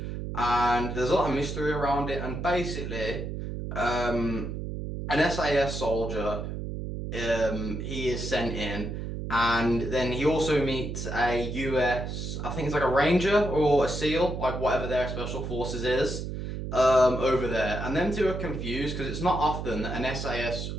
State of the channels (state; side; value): noise; right; hum, 5 dB below the sound